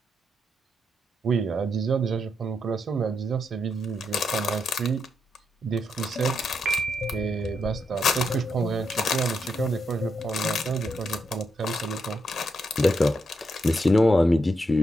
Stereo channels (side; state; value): both; normal; correlation 0.82